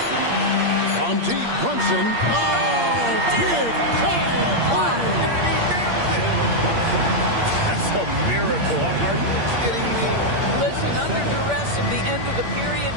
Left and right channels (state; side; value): late; left; 8.6 ms